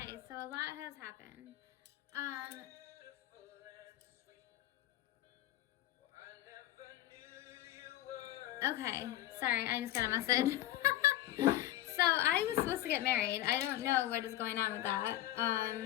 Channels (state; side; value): quieter; right; 14.0 dB